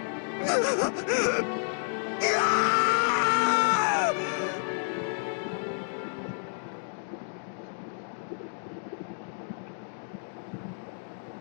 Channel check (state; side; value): silent; right; 58 dB below the other